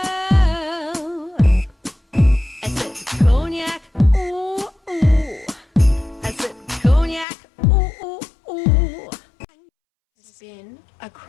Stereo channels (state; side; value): drops out; right; at 7.2 s